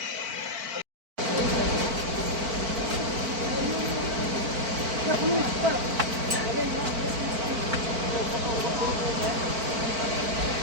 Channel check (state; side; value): late; left; 4.5 ms